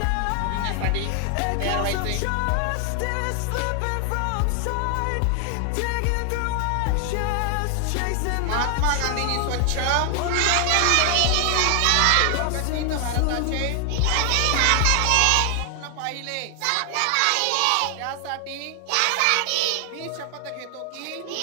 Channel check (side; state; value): both; different; correlation 0.00